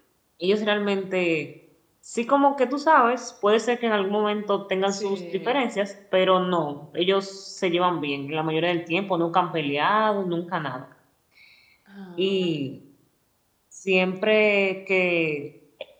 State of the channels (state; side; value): identical; both; correlation 1.00